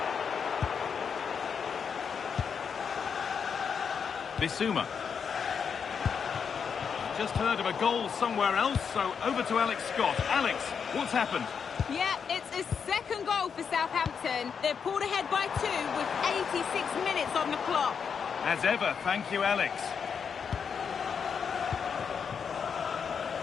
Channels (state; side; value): quieter; right; 6.6 dB